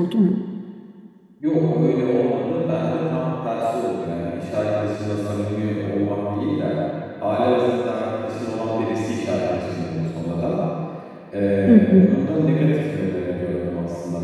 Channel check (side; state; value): both; identical; correlation 1.00